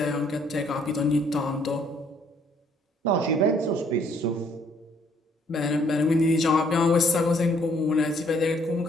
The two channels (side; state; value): both; normal; correlation 0.65